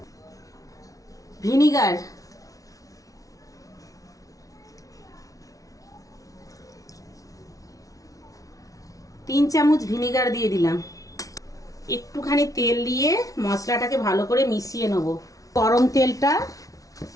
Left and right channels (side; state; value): right; late; 0.17 ms